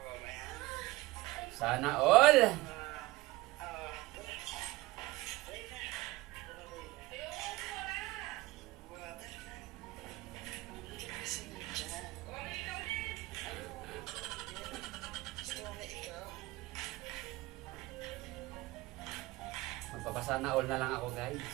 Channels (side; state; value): left; quieter; 20.0 dB